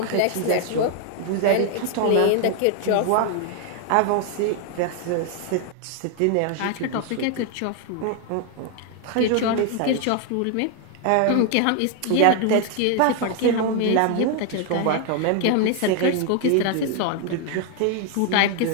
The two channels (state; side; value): different; both; correlation 0.00